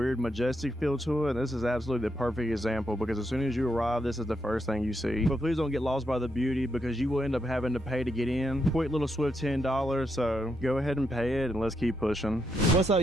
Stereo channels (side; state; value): both; normal; correlation 0.80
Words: majestic feel to it, and this is absolutely the perfect example because as soon as you arrive, this is the first thing you see. But please don't get lost by the beauty because you will end up having to pay to get in. Quick little swift $10, so go ahead and pay it and let's keep pushing. What's up,